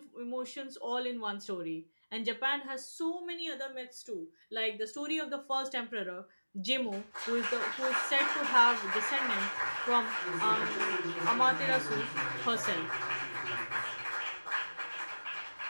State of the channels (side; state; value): both; inverted; correlation -1.00